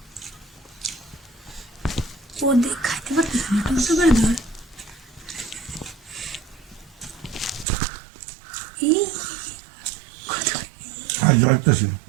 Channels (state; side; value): drops out; left; at 7.7 s